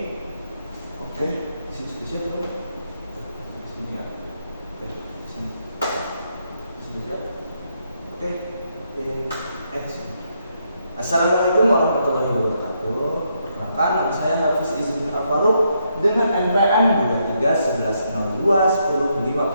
Oke, di sini dulu. Di sini ya. Oke, di sini. Di sini siap. Oke, in action. Assalamualaikum warahmatullahi wabarakatuh. Perkenalkan, nama saya Hafiz Izzuddin Al-Faruq dengan NPM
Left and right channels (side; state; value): both; inverted; correlation -0.77